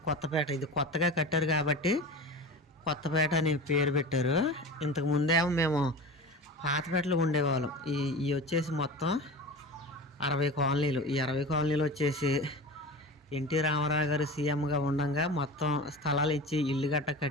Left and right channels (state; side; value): normal; both; correlation 0.31